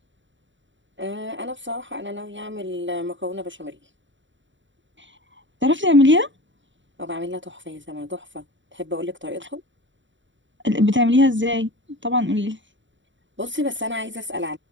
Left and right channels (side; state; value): left; late; 0.54 ms